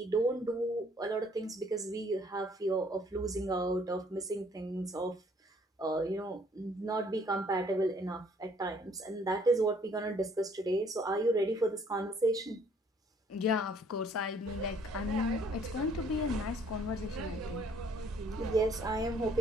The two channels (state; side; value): normal; both; correlation 0.61